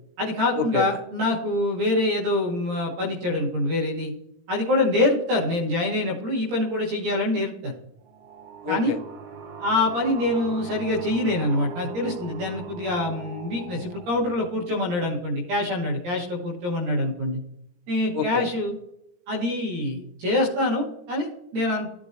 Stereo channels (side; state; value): left; late; 17 ms